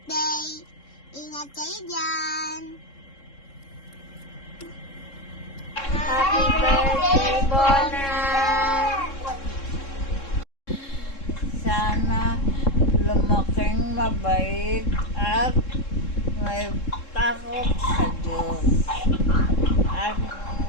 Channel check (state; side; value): late; right; 3.7 ms